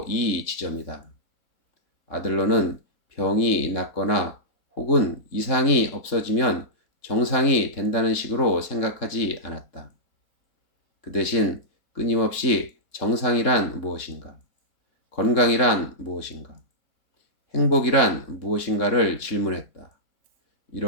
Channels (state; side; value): late; right; 3.6 ms